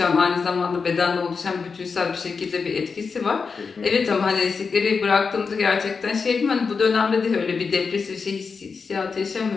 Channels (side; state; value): right; quieter; 5.1 dB